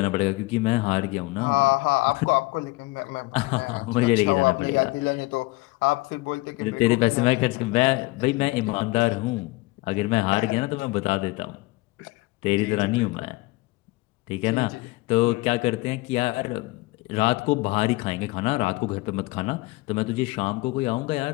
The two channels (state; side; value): quieter; right; 22.2 dB